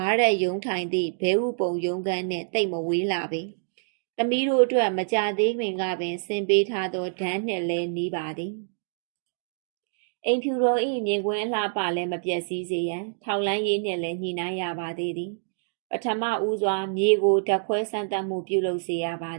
ားရက်ရုံးထိုင်သည့်ဘဲဥပုံရုံးခန်းနှင့်တိတ်မဝေးလာပေသမီးတို့အတွက်မကြသေးခင်ကပင်ဆင်ပေးထားသောဒန်းနှင့်လည်းနီးပါသည်အိမ်ဖြူတော်၏မြင်ကွင်းအလှပလည်းမပြည့်စည်စေရန်ထောက်လန်းရေးနှင့်လည်းညှိနှိုင်းရပါသေးသည်ပထမဦးစွာမြေကိုဓာတ်ခွဲစမ်းသပ်မှုပြုလုပ်စေရပါ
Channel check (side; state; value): left; silent; digital silence